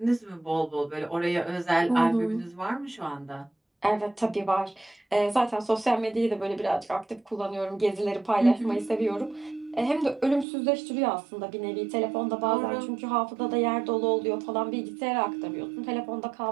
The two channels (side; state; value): left; drops out; at 10.5 s